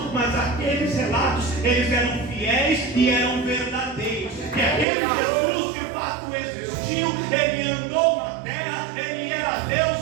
mas aqueles relatos, eles eram fiéis e eram verdadeiros, que aquele Jesus de fato existiu, ele andou na terra, ele era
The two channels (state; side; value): drops out; left; at 4.9 s